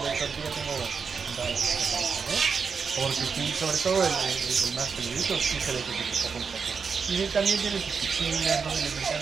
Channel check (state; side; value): quieter; left; 5.7 dB